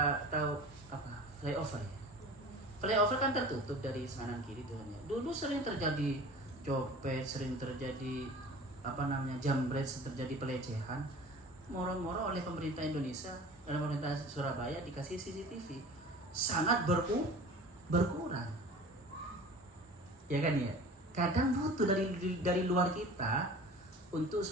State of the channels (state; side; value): normal; both; correlation 0.41